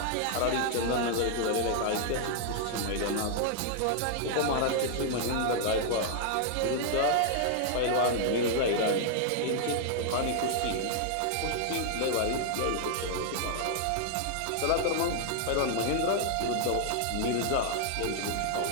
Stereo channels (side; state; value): both; different; correlation -0.01